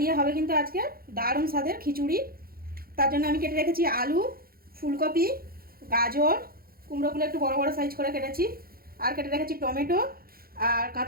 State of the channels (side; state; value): left; late; 0.43 ms